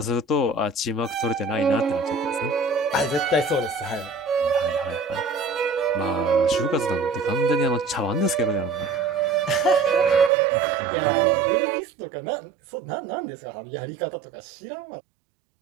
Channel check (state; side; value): drops out; left; at 10.3 s